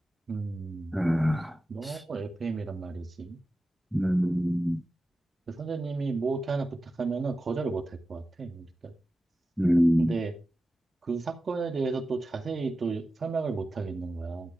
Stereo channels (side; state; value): both; normal; correlation 0.94